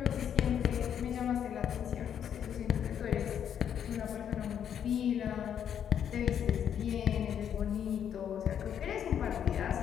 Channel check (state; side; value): quieter; right; 8.9 dB